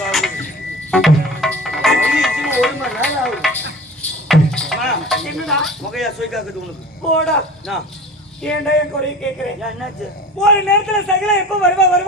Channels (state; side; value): normal; both; correlation 0.38